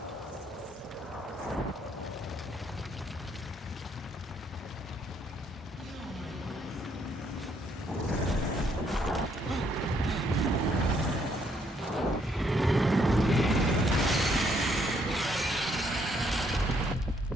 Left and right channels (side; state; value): both; normal; correlation 0.70